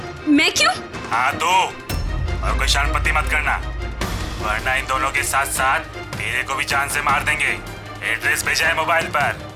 मैं क्यों? हाँ तो, और कोई शानपत्ती मत करना, वरना इन दोनों के साथ साथ तेरे को भी जान से मार देंगे। एड्रेस भेजा है मोबाइल पर,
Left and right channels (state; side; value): identical; both; correlation 1.00